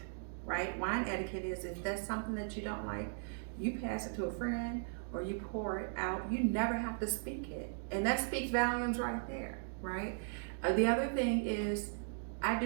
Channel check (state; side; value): silent; left; digital silence